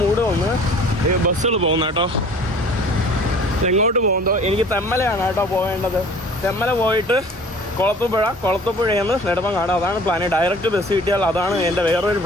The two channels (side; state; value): both; normal; correlation 0.48